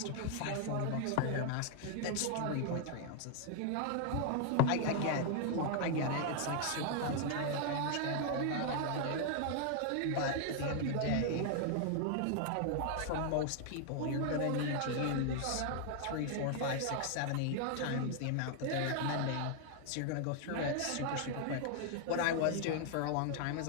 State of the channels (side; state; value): both; different; correlation 0.00